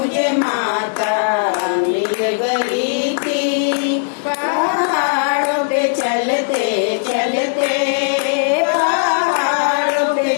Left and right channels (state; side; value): silent; right; digital silence